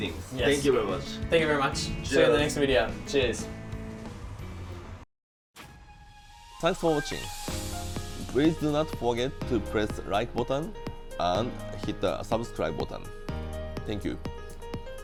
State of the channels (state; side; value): identical; both; correlation 1.00